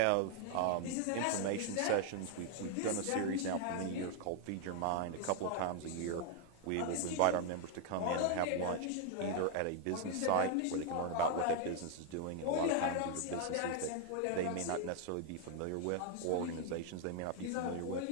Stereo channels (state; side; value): different; both; correlation 0.00